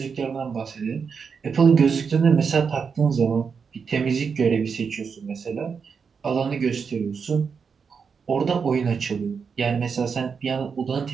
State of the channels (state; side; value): quieter; left; 5.9 dB